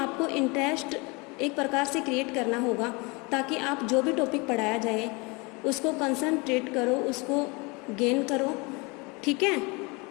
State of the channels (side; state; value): right; quieter; 27.8 dB